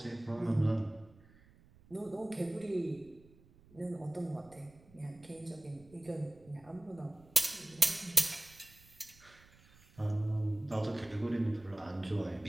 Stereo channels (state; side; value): noise; right; rumble, 25 dB below the sound